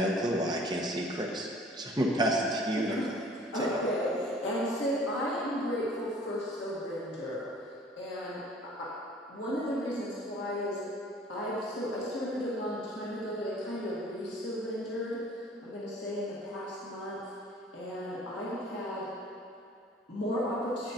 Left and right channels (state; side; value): normal; both; correlation 0.51